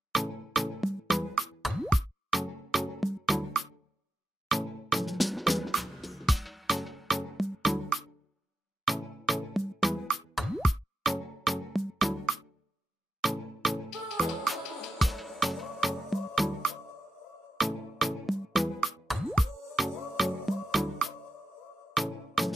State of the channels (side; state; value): both; normal; correlation 0.85